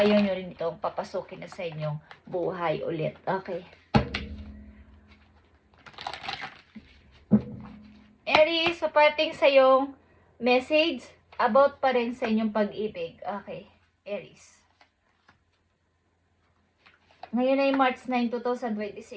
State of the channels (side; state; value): both; identical; correlation 1.00